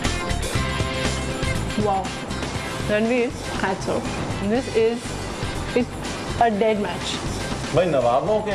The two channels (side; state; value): both; identical; correlation 1.00